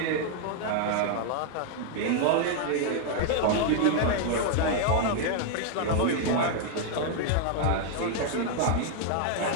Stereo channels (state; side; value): different; both; correlation 0.00